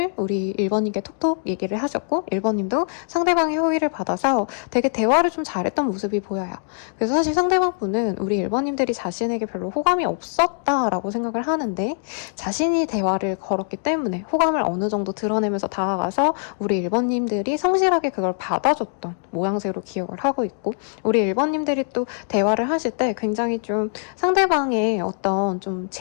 우리 1번님께 톡톡 얘기를 하셨고 1번님도 상대방의 호의를 받아서 되게 대화를 좀 잘했던 모습이 보여요. 그래서 사실 상대방 분은 우리 1번님들이 자신에게 별로 호감이 없었다라고 생각을 하는데 자신이 대화를 걸었기 때문에 호감을 어느 정도 드러내면서 다가가서 우리 1번님들이 성실하게 그걸 받아줬던 모양새로 기억을 하고 있고 우리 1번님들이 또 대화를 하실 때 굉장히 좀 상대방의 어떤 좀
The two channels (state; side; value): silent; right; 64 dB below the other